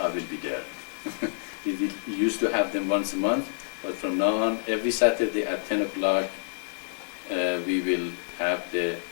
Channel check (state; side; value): silent; right; digital silence